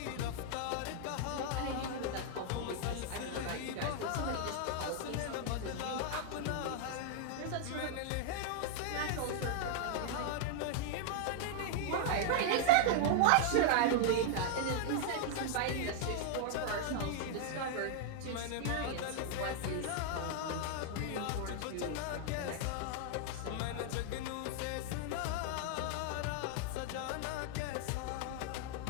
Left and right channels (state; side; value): different; both; correlation 0.00